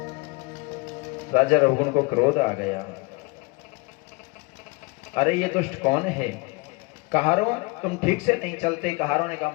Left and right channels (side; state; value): right; quieter; 26.7 dB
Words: राजा रघुगुण को क्रोध आ गया, अरे ये दुष्ट कौन है? कहारों तुम ठीक से नहीं चलते। कहारों ने कहा,